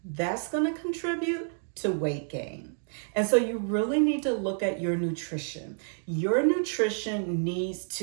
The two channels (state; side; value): silent; left; digital silence